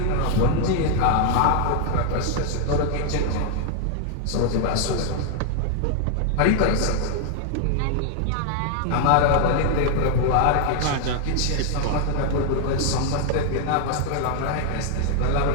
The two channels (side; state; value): both; different; correlation 0.00